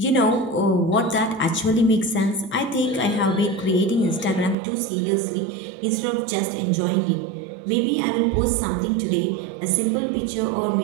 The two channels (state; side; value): drops out; left; at 4.5 s